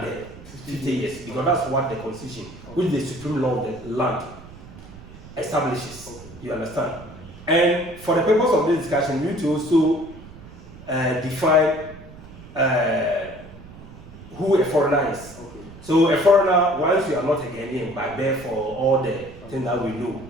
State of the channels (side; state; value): right; noise; rumble, 17 dB below the sound